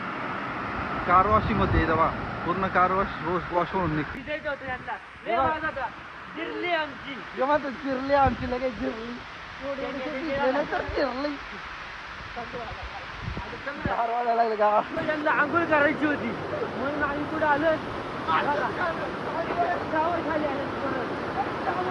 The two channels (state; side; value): identical; both; correlation 1.00